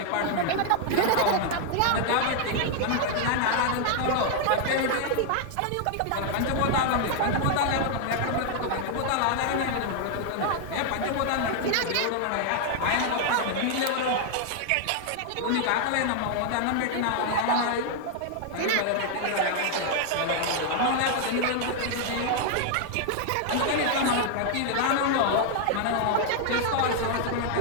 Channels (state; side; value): different; both; correlation 0.00